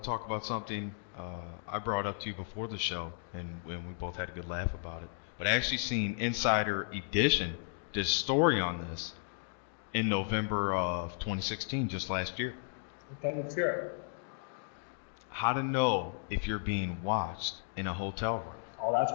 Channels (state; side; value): silent; right; digital silence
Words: talk about something I brought up to you before the show, and we both had a good laugh about it. But I actually seen Insider Edition did a story on this in November of 2016, just last year. Okay, let's hear it. How to know if you're being watched in a hotel room. Oh, that's